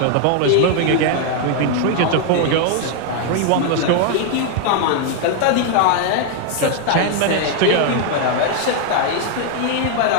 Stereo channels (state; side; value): different; both; correlation 0.00